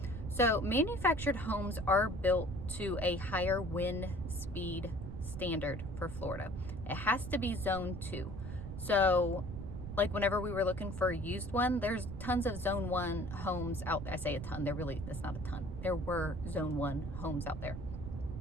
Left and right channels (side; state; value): right; noise; rumble, 8 dB below the sound